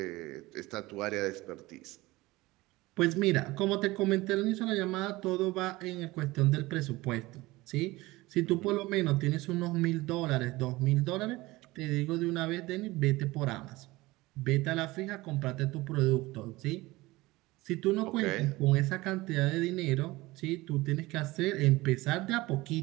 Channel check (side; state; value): left; quieter; 20.2 dB